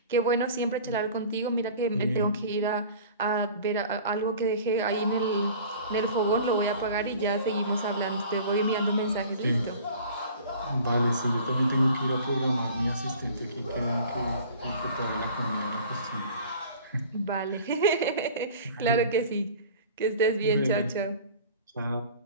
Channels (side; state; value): both; inverted; correlation -0.44